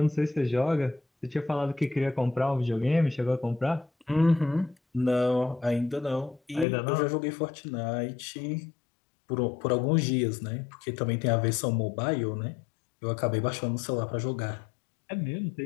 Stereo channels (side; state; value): right; drops out; at 6.7 s